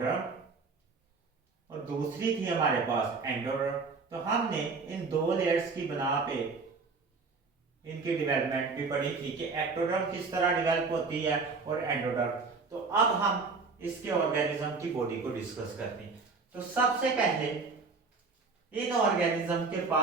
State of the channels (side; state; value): left; quieter; 4.4 dB